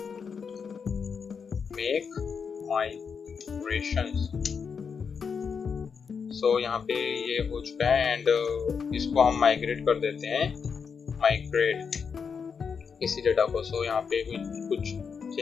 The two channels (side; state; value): right; quieter; 6.1 dB